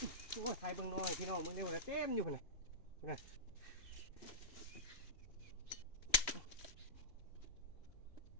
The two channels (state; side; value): late; right; 2.4 ms